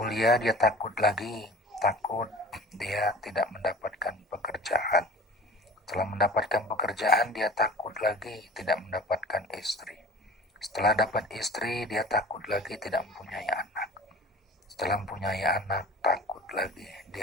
dia takut lagi, takut dia tidak mendapatkan pekerjaan. Setelah mendapatkan pekerjaan dia takut lagi tidak mendapatkan istri. Setelah dapat istri dia takut lagi tidak mempunyai anak. Setelah mempunyai anak takut lagi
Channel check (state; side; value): normal; both; correlation 0.40